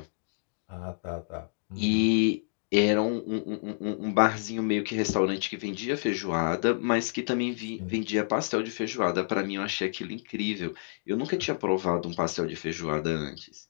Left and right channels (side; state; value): right; silent; digital silence